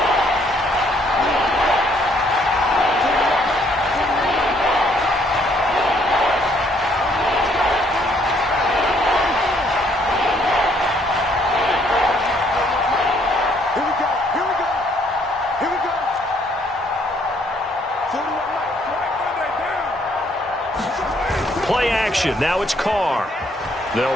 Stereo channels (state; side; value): normal; both; correlation 0.66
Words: Play action. Now it's Carr. They'll